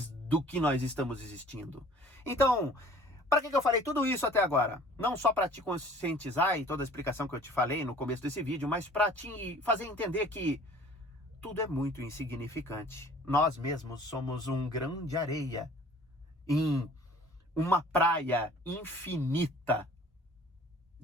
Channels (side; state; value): both; normal; correlation 0.50